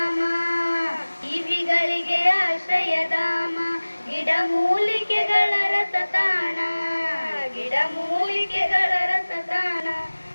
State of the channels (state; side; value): inverted; both; correlation -1.00